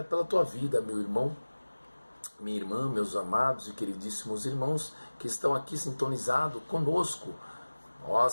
pela tua vida, meu irmão, minha irmã, meus amados e queridíssimos irmãos que estão aqui sintonizados conosco.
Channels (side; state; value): both; inverted; correlation -1.00